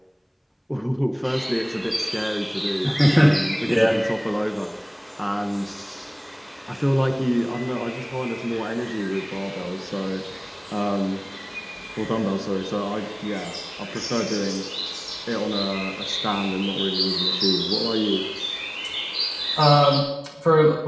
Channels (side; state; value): both; identical; correlation 1.00